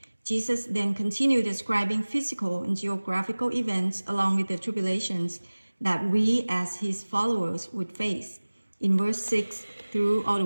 Jesus then continued describing physical and geographical events along with the tribulations that we as his followers would face. In verse 6 through all the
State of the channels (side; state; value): both; inverted; correlation -1.00